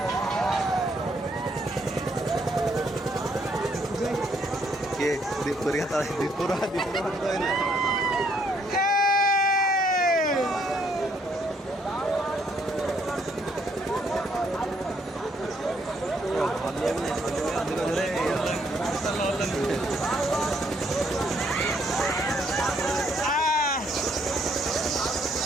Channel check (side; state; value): both; normal; correlation 0.70